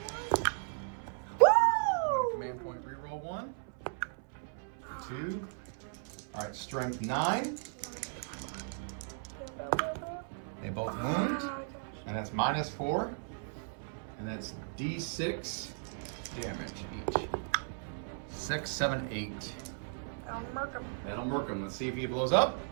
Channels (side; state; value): left; silent; 54 dB below the other